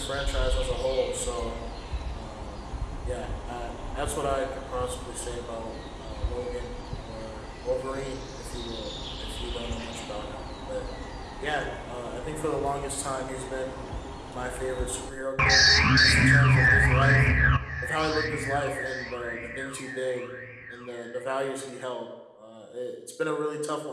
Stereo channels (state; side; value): identical; both; correlation 1.00